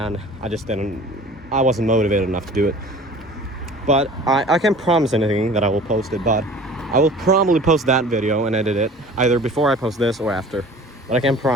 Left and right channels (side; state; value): both; normal; correlation 0.44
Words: I wasn't motivated enough to do it. But I can't promise anything that I will post it, but I will probably post that video and edit it, either before I post this or after. But I can't